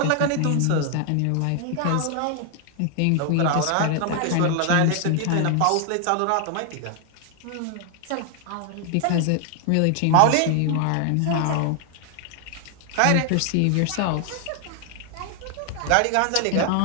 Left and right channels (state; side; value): different; both; correlation 0.00